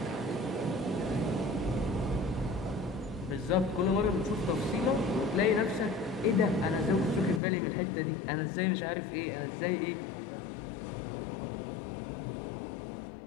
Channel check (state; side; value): drops out; right; at 7.4 s